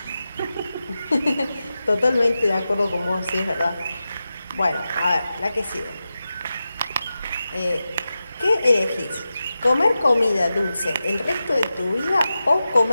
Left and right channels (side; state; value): both; inverted; correlation -0.92